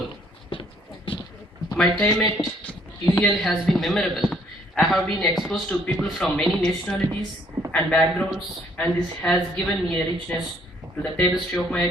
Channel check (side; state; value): both; normal; correlation 0.64